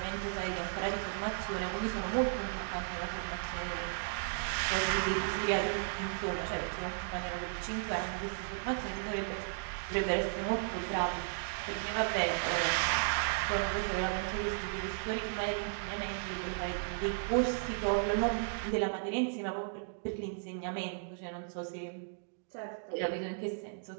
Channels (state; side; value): silent; left; digital silence